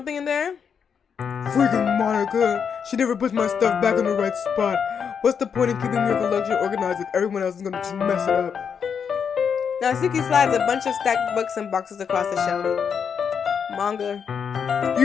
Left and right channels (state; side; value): quieter; right; 6.9 dB